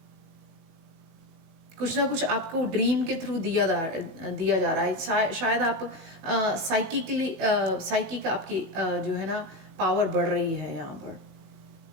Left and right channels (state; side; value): late; left; 18 ms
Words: कुछ ना कुछ आपको ड्रीम के थ्रू दिया जा रहा है। शायद आप साइकिक आपकी जो है ना पावर बढ़ रही है यहाँ पर।